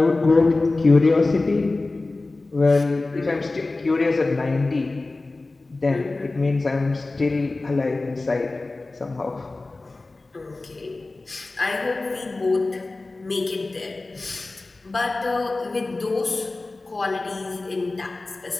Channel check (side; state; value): right; quieter; 3.2 dB